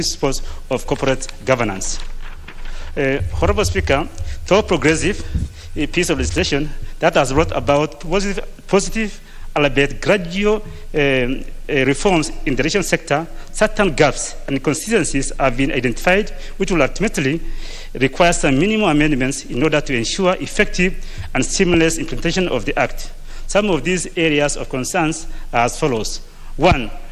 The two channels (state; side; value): identical; both; correlation 1.00